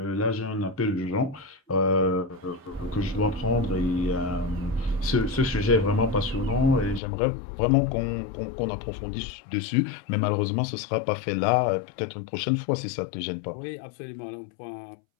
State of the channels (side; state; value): right; drops out; at 7.0 s